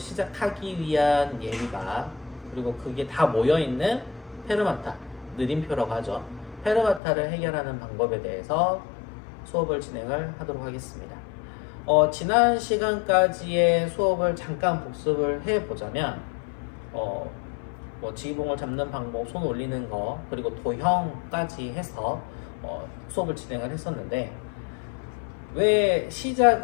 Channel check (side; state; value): right; drops out; at 7.0 s